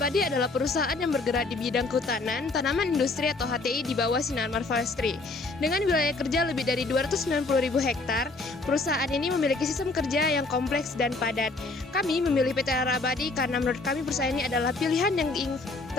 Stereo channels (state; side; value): quieter; right; 3.4 dB